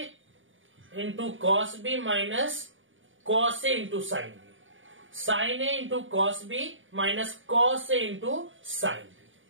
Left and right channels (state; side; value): late; left; 0.57 ms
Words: into cos B minus cos ए इंटू साइन बी, साइन ए into cos B minus cos ए इंटू साइन बी।